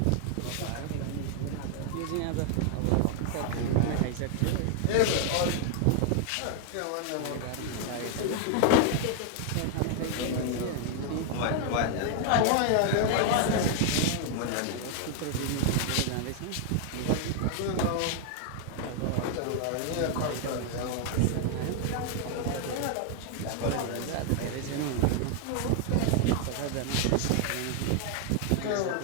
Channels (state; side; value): different; both; correlation 0.00